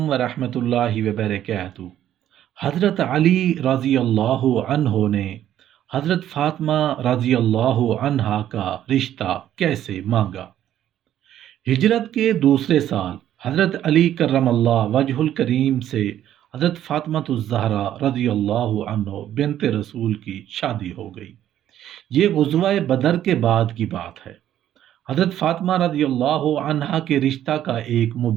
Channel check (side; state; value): left; quieter; 11.5 dB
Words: ورحمۃ اللہ وبرکاتہ۔ حضرت علی رضی اللہ عنہ نے حضرت فاطمہ رضی اللہ عنہا کا رشتہ کیسے مانگا؟ ہجرت کے دوسرے سال حضرت علی کرم اللہ وجہ الکریم سے حضرت فاطمہ الزہرا رضی اللہ عنہ بنت رسول کی شادی ہو گئی۔ یہ غزوہ بدر کے بعد کی بات ہے۔ حضرت فاطمہ رضی اللہ عنہا کے رشتہ کا ایک